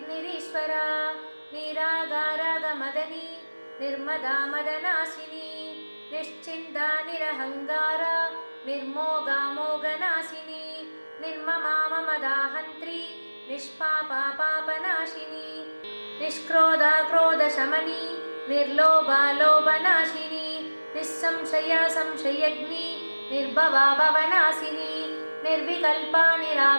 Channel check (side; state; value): both; inverted; correlation -1.00